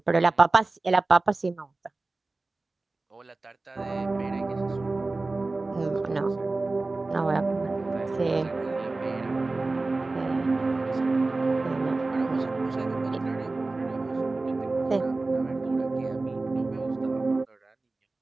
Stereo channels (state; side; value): quieter; left; 3.3 dB